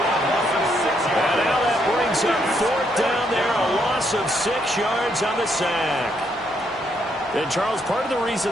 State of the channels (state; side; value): normal; both; correlation 0.74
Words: And now that brings up 4th down there. A loss of 6 yards on the sack. And, Charles, part of the reason